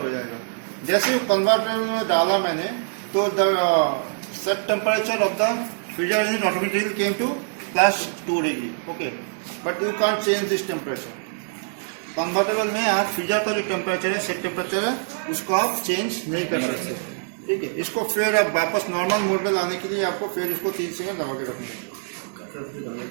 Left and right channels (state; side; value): silent; left; digital silence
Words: हो जाएगा। जैसे कन्वर्टेबल में डाला मैंने तो the set temperature of the freezer unit automatically came to +2 degree, okay. But you can't change this temperature. Convertible में आप फ्रीजर का जो टेम्परेचर है, सेट टेम्परेचर है, उसको आप चेंज नहीं कर सकते, ठीक है। इसको फिर आप वापस नॉर्मल मोड में लाने के लिए आपको फिर इसको 3 सेकंड दबा के रखना है,